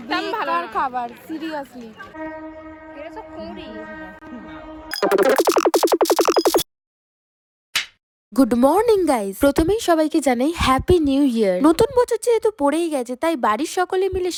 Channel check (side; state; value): both; identical; correlation 1.00